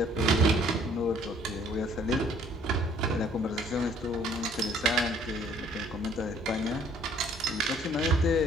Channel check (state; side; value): normal; both; correlation 0.59